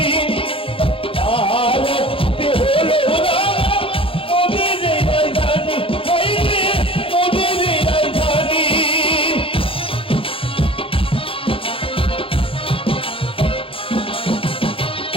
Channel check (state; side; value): late; right; 0.26 ms